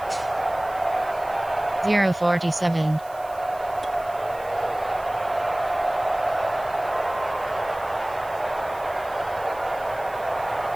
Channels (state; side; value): noise; right; hiss, 23 dB below the sound